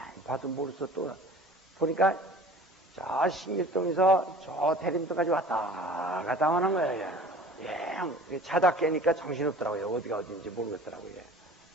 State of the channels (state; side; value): normal; both; correlation 0.44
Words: 봐도 모르겠어 또 보니까 저 신길동에서 저 대림도까지 왔다 갔다 하는 거예요. 예, 자다 깨니까 정신없더라고요. 어디가 어딘지 모르겠더라고요.